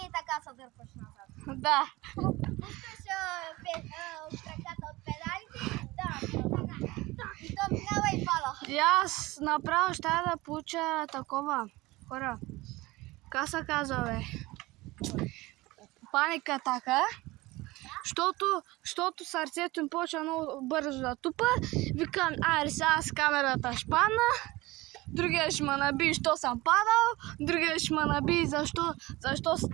така се дърпаш назад. Да. Пускаш краката от педалите, и то минава и пала. И аз направо ще да получа такова, хора. Как се казва, бе? Паника атака. Защото сърцето им почва много бързо да тупа. Викам, сега с камерата ще падна. Другия ще ме наби, що съм падал. Другия ще ме наби, защо с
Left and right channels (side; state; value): left; quieter; 20.5 dB